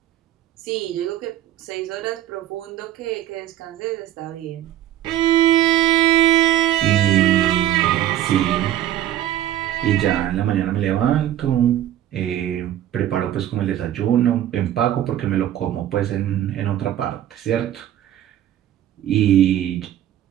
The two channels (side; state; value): left; quieter; 12.3 dB